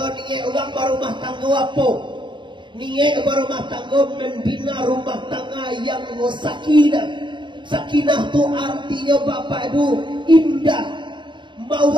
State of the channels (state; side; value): late; left; 0.23 ms